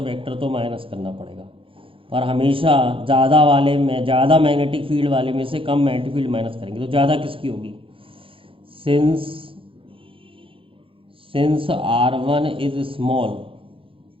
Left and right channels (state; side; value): late; left; 0.26 ms